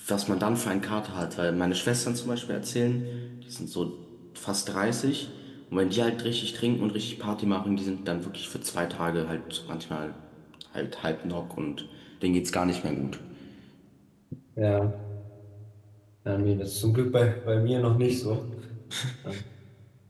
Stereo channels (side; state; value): both; identical; correlation 1.00